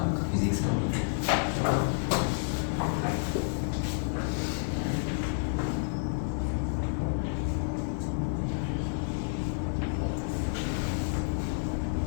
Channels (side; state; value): right; silent; digital silence